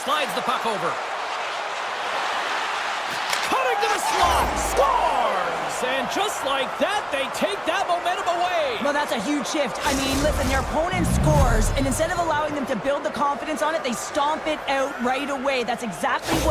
Slides the puck over. Cutting to the slot. Scores! And just like that, they take that momentum away. Well, that's a huge shift. I mean, listen, their opponent scores, and instead of allowing them to build the confidence on it, they stomp it out right away. That's exactly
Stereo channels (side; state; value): both; identical; correlation 1.00